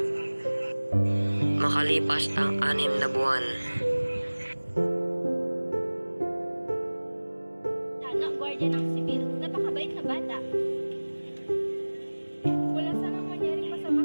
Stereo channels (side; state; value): both; inverted; correlation -1.00